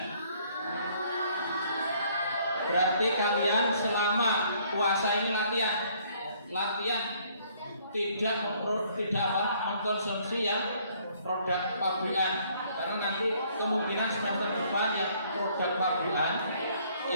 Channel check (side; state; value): both; inverted; correlation -0.63